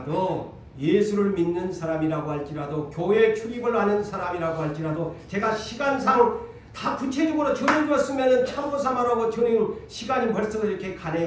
예수를 믿는 사람이라고 할지라도 교회 출입을 하는 사람이라고 할지라도 제가 시간상 다 구체적으로 전해주었으면 참고삼아라고 전해 시간이 벌써 이렇게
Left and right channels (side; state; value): both; identical; correlation 1.00